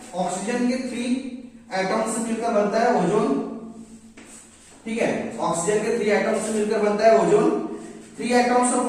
ऑक्सीजन के 3 एटम से मिलकर बनता है ओजोन, ठीक है। ऑक्सीजन के 3 एटम से मिलकर बनता है ozone. 3 atoms of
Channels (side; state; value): both; identical; correlation 1.00